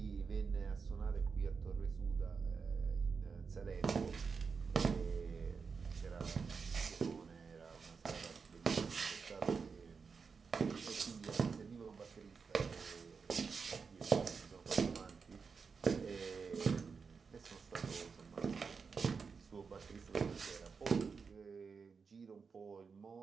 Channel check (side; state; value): left; quieter; 5.4 dB